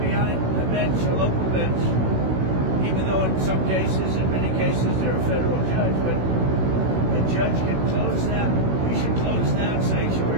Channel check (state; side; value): late; left; 16 ms